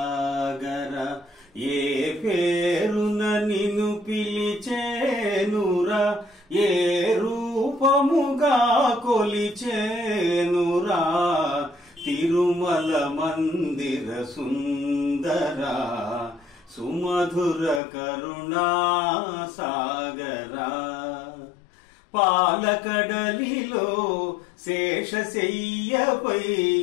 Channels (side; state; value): right; drops out; at 17.8 s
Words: ఏ పేరున నిన్ను పిలిచేనురా ఏ రూపముగా కొలిచేనురా తిరుమల మందిర సుందర సుమధుర కరుణా సాగర పాలకడలిలో శేషశయ్యపై